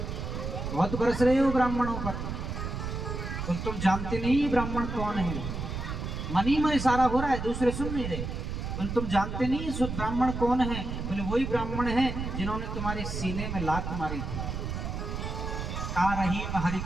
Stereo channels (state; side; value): noise; right; rumble, 4 dB below the sound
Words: बहुत बरस रहे हो ब्राह्मणों पर, तो तुम जानते नहीं ब्राह्मण कौन है। मन ही में इशारा हो रहा है, दूसरे सुन नहीं रहे। बोले तुम जानते नहीं ब्राह्मण कौन है? बोले वही ब्राह्मण है जिन्होंने तुम्हारे सीने में लात मारी थी। का रही हरि